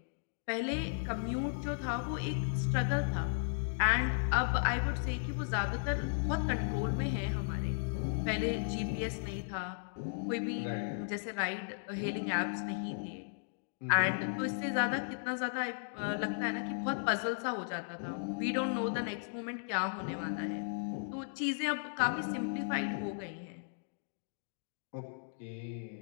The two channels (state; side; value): silent; right; digital silence